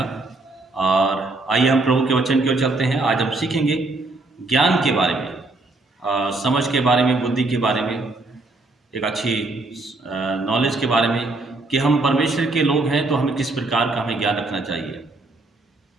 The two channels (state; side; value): quieter; left; 3.1 dB